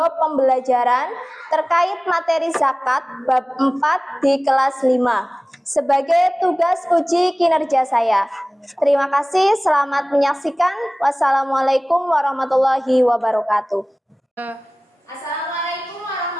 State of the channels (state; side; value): normal; both; correlation 0.98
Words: pembelajaran terkait materi zakat bab 4 di kelas 5 sebagai tugas uji kinerja saya. Terima kasih, selamat menyaksikan. Wassalamualaikum warahmatullahi wabarakatuh. Assalamualaikum